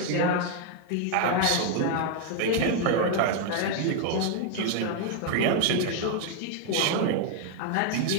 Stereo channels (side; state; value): both; different; correlation 0.00